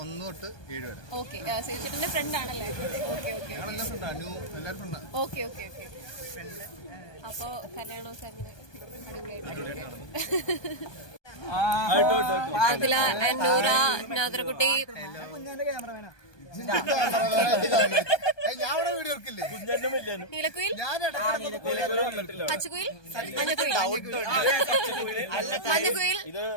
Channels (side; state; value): right; late; 1.2 ms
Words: 1 തൊട്ട് 7 വരെ. ഓക്കെ, ശിവചേട്ടന്റെ ഫ്രണ്ട് ആണല്ലേ? Okay okay okay okay okay. അപ്പോ കല്യാണമൊക്കെ അങ്ങനെ ആദില, നൂറ, നാദർകുട്ടി, നീലക്കുയിൽ, പച്ചക്കുയിൽ, മഞ്ഞക്കുയിൽ, മഞ്ഞക്കുയിൽ,